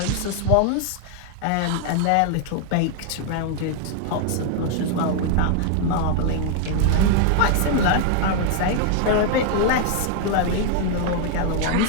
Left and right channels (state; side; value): different; both; correlation 0.00